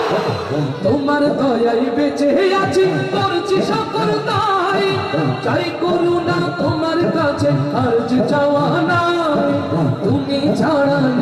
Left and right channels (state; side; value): identical; both; correlation 1.00